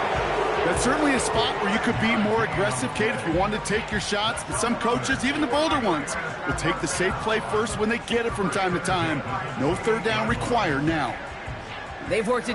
That's certainly a spot where you could be more aggressive, Kate, if you wanted to take your shots. But some coaches, even the bolder ones, will take the safe play first when they get it from time to time. No 3rd down required now. They've worked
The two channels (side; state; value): both; identical; correlation 1.00